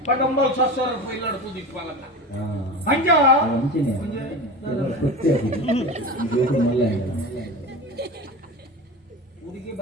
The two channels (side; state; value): both; normal; correlation 0.29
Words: ಪಡಂಬಲ್ ಸಸ್ಸರ ಪೈಲಡ ಪೂಜಿಸ್ಪಾಲನ ಅಂಜ ಹುಡುಗಿ